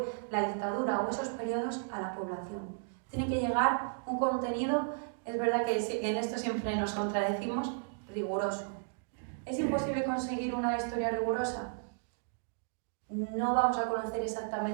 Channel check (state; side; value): silent; left; digital silence